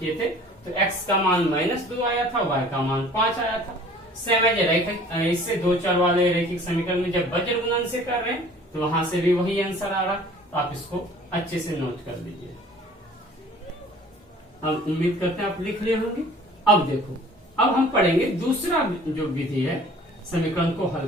थे तो x का मान -2 आया था, y का मान 5 आया था। सेम है रैखिक, इससे दो चर वाले रैखिक समीकरण में जब वज्र गुणन से कर रहे हैं तो वहां से भी वही आंसर आ रहा, तो आप इसको अच्छे से नोट कर लीजिए। अब उम्मीद करते हैं आप लिख लिए होंगे। अब देखो, अब हम पढ़ेंगे दूसरा जो विधि है समीकरण को हल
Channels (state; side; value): normal; both; correlation 0.49